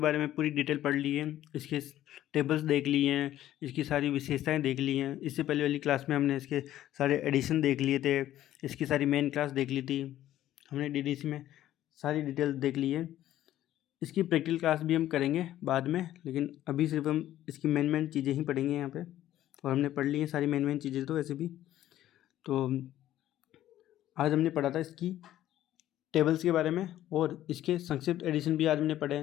में पूरी डिटेल पढ़ ली है, इसके टेबल्स देख लिए हैं, इसकी सारी विशेषताएं देख ली हैं। इससे पहले वाली क्लास में हमने इसके सारे एडिशन देख लिए थे, इसकी सारी मेन क्लास देख ली थी, हमने डीडीसी में सारी डिटेल देख ली है। इसकी प्रैक्टिकल क्लास भी हम करेंगे बाद में, लेकिन अभी सिर्फ हम इसकी मेन चीज़ें ही पढ़ेंगे यहाँ पे। और हमने पढ़ ली है सारी मेन चीज़ें तो वैसे भी। तो आज हमने पढ़ा था इसकी टेबल्स के बारे में और इसके संक्षिप्त एडिशन भी आज हमने पढ़े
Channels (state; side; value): quieter; right; 13.0 dB